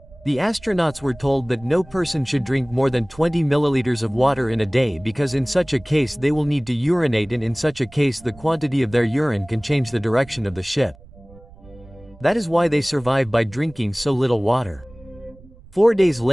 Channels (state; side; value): noise; right; rumble, 23 dB below the sound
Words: The astronauts were told that no person should drink more than 20 milliliters of water in a day because in such a case they will need to urinate, and in such a case the quantity of their urine can change the direction of the ship. That is why they survive by drinking so little water. 4 days